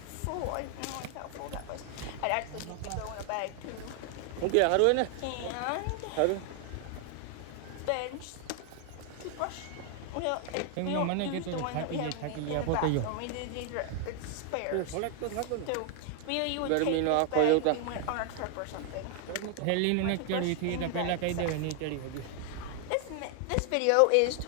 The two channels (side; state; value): both; different; correlation 0.00